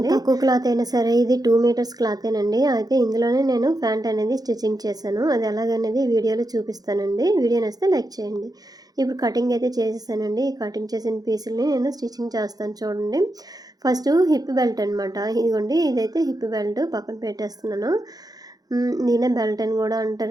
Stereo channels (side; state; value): left; late; 0.19 ms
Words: తక్కువ క్లాత్ అయినా సరే, ఇది 2 మీటర్స్ క్లాతేనండి. అయితే ఇందులోనే నేను ప్యాంట్ అనేది స్టిచ్చింగ్ చేశాను. అది ఎలాగనేది వీడియోలో చూపిస్తానండి. వీడియో నచ్చితే లైక్ చేయండి. ఇప్పుడు కటింగ్ అయితే చేసేసానండి. ఈ కటింగ్ చేసిన పీసుల్ని నేను స్టిచ్చింగ్ చేస్తాను చూడండి. ఫస్ట్ హిప్ బెల్ట్ అనమాట. ఇదిగోండి, ఇదైతే హిప్ బెల్ట్ పక్కన పెట్టేస్తున్నాను. దీనే బెల్ట్ అని కూడా